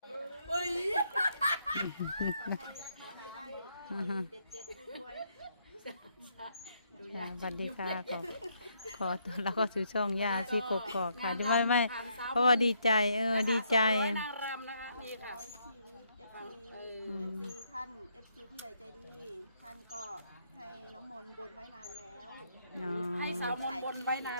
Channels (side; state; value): both; inverted; correlation -0.74